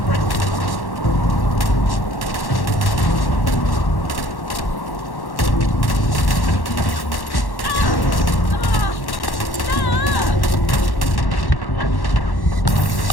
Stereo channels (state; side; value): late; right; 1.1 ms